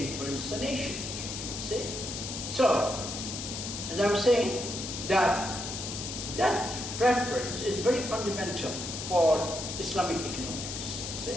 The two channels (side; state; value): left; noise; hiss, 6 dB below the sound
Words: the nation. See? So, as I'm saying, that preference is very fundamental for Islamic economics.